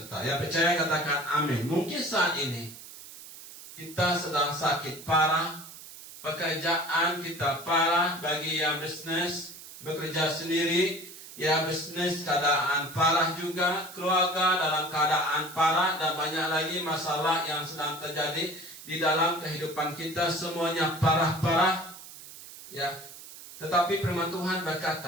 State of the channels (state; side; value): noise; right; hiss, 16 dB below the sound